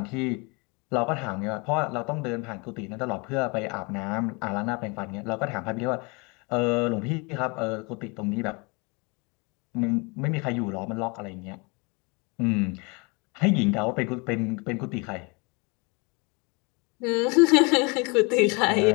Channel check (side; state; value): right; quieter; 29.6 dB